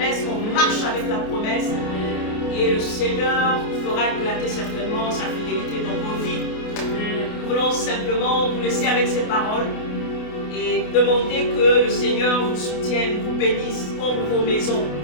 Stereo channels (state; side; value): late; right; 28 ms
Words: on marche avec la promesse. Et le Seigneur fera éclater certainement sa fidélité dans vos vies. Nous voulons simplement vous laisser avec ces paroles et demander que le Seigneur vous soutienne, vous bénisse comme vos maisons.